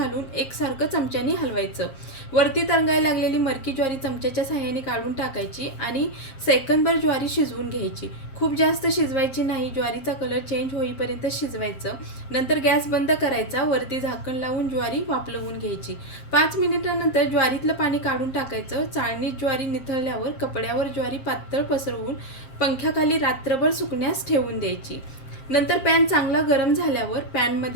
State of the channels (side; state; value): right; late; 7.5 ms